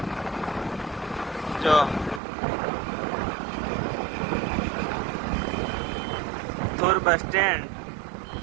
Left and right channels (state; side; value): drops out; left; at 2.2 s